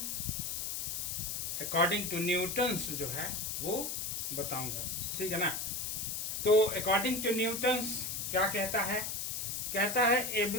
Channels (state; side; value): noise; left; hiss, 2 dB below the sound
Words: अकॉर्डिंग टू न्यूटन्स जो है वो बताऊंगा, ठीक है ना। तो अकॉर्डिंग टू न्यूटन्स क्या कहता है? कहता है